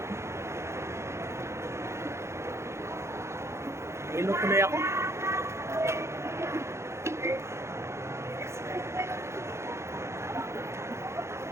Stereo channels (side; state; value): left; late; 0.13 ms